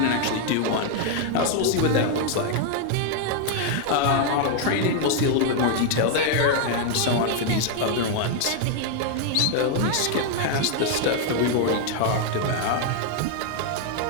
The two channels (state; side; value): different; both; correlation 0.00